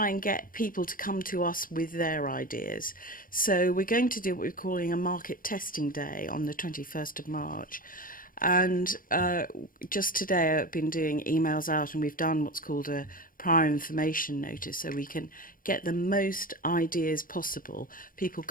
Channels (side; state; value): right; late; 0.40 ms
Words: and get people to come to us with their ideas. So we're going to do what we're calling a market testing day on the 21st of March. And just today I've been doing emails out, and we've done what's called a prior information notice, so we can get the most ideas possible, people